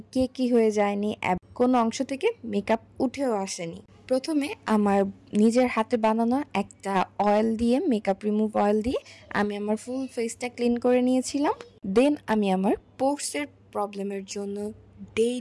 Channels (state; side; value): identical; both; correlation 1.00